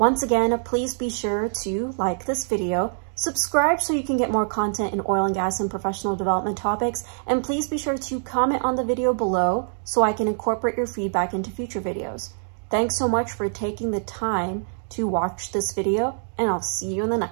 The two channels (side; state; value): left; silent; digital silence